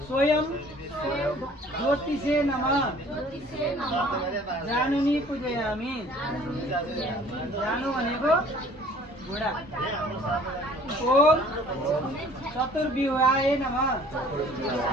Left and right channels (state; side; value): normal; both; correlation 0.52